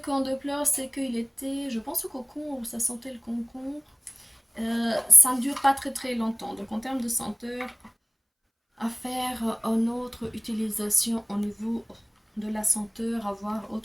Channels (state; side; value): identical; both; correlation 1.00